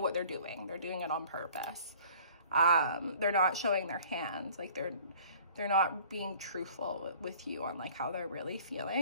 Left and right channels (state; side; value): inverted; both; correlation -0.51